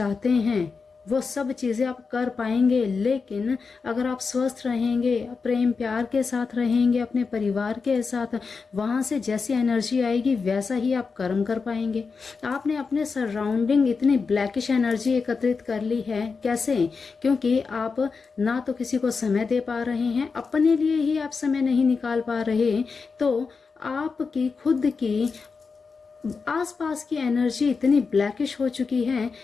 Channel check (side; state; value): right; quieter; 4.9 dB